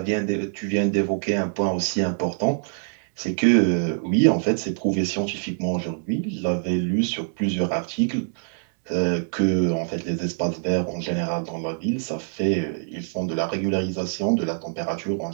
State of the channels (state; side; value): silent; left; 62 dB below the other